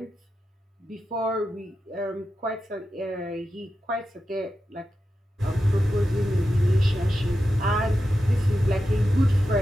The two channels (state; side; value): normal; both; correlation 0.90